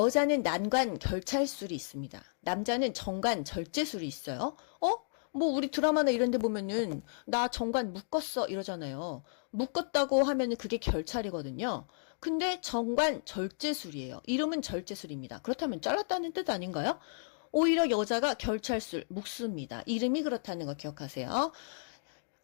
난관 결찰술이 있습니다. 남자는 정관 절제술이 있어요. 뭐 우리 드라마나 이런 데 보면은 나 정관 묶었어 이러잖아요. 묶었다고 하면은 그게 결찰이거든요. 근데 정관 절제술이에요. 이름은 절제술입니다. 그렇다면 잘랐다는 뜻 아닌가요? 오히려 여자가 결찰술 묶습니다. 이름이 그렇다는 거 기억하세요.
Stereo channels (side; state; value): right; silent; digital silence